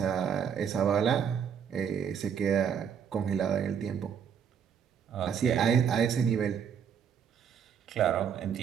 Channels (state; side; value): quieter; left; 7.6 dB